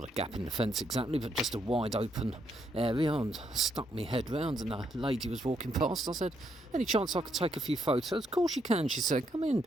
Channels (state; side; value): normal; both; correlation 0.76